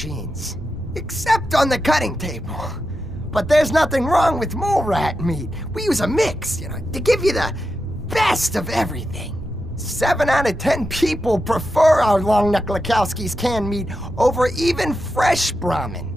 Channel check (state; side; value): normal; both; correlation 0.88